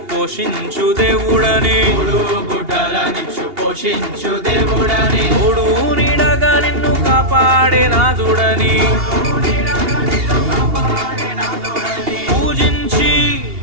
పోషించు దేవుడని తోడు నీడగా నిన్ను కాపాడే నాదుడని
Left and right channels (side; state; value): left; late; 2.8 ms